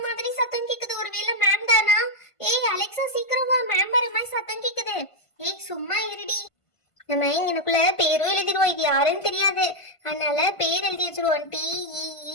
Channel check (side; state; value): right; late; 1.5 ms